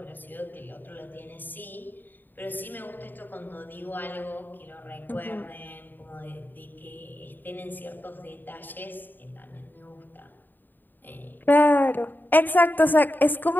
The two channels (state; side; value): late; right; 0.091 ms